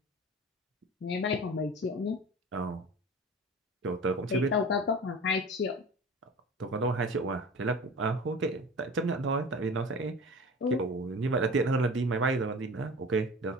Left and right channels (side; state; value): both; normal; correlation 0.37